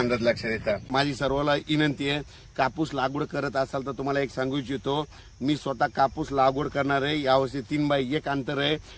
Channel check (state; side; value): identical; both; correlation 1.00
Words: लक्षात येतात. माझी सर्वांना विनंती आहे, कापूस लागवड करत असाल तर तुम्हाला एक सांगू इच्छितो, मी स्वतः कापूस लागवड करणार आहे. यावर्षी 3x1 अंतर आहे.